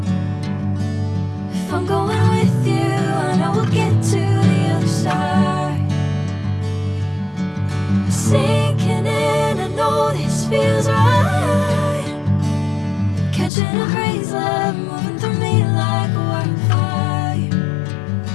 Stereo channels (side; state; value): right; drops out; at 13.5 s